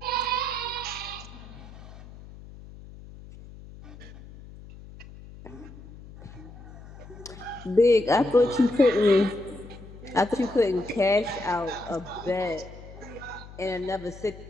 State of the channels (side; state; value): left; noise; hum, 17 dB below the sound